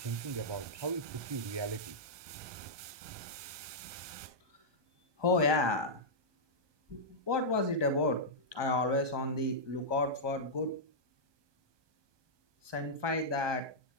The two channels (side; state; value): left; late; 1.2 ms